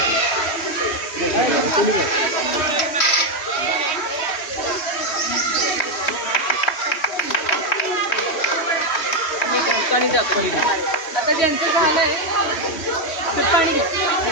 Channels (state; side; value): late; right; 3.2 ms